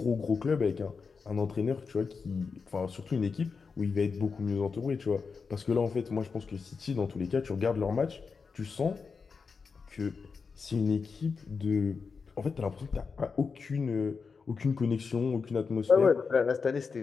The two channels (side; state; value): right; quieter; 5.2 dB